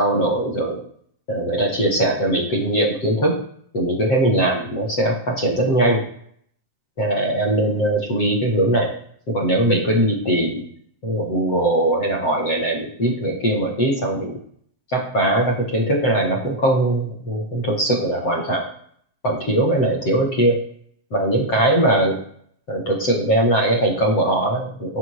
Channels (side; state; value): right; late; 7.7 ms